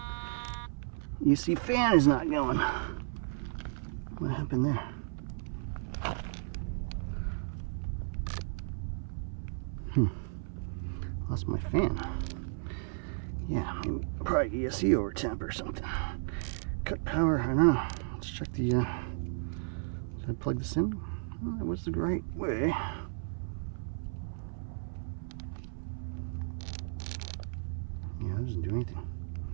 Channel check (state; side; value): silent; left; 55 dB below the other